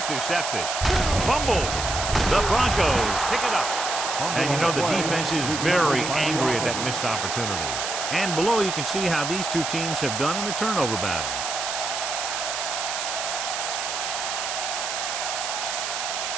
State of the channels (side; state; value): right; noise; hiss, 3 dB below the sound